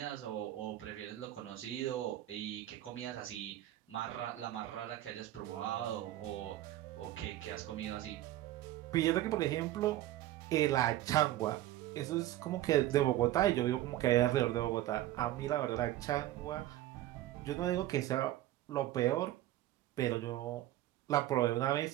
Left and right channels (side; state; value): left; quieter; 14.5 dB